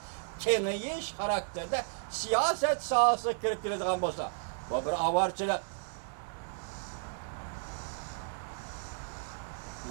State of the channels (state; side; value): silent; left; digital silence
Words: kengiyiş karakterde siyaset sahası kirip girdiğin bolsa. Bu bir avarçılık.